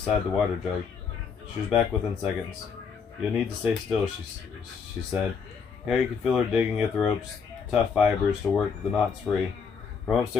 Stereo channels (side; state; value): right; quieter; 6.0 dB